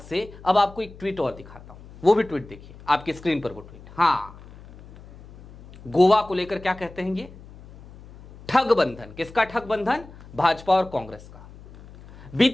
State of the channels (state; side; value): noise; left; hum, 19 dB below the sound